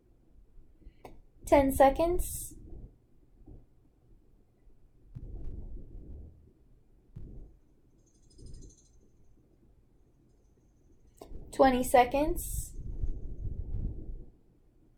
Ten seconds. 20 seconds.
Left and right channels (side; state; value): both; identical; correlation 1.00